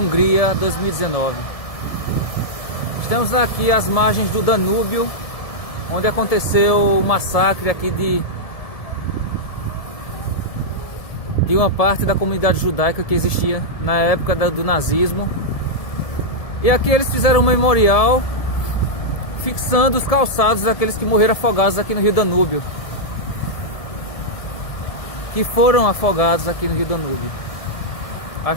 2019. Estamos aqui às margens do Danúbio, onde aconteceu o massacre aqui de uma parte da comunidade judaica que existia na época do nazismo. E aqui eles fizeram um memorial fixando os calçados daqueles que morreram afogados aqui no rio Danúbio, que foram afogados aqui no rio Danúbio. A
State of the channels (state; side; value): late; right; 1.7 ms